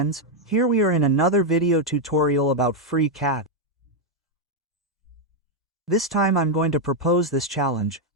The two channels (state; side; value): normal; both; correlation 0.00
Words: here we are in another video tutorial about FreeCAD. This time I'm going to propose this challenge,